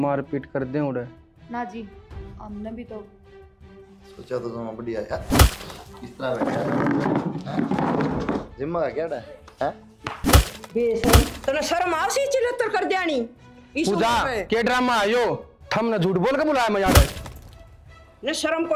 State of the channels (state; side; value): identical; both; correlation 1.00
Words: पीट कर दें उड़े। ना जी, हमने भी तो सोचा तो तुम बढ़िया यार, इस तरह बैठा जिम्मा का क्या है? बेशरम, तने शर्म आवसी चिल्लतर कर देनी इस पूजा उम्र में। के ड्रामा आयो, थमने झूठ बोल के बुलाया मैं यार। ने शर्म